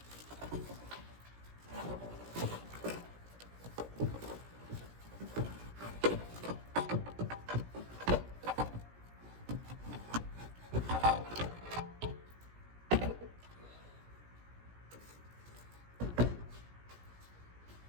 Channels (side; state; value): left; late; 17 ms